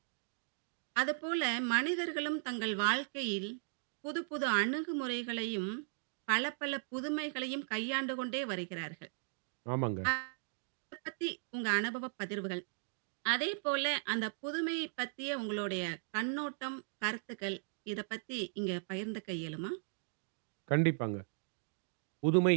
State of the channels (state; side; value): silent; left; digital silence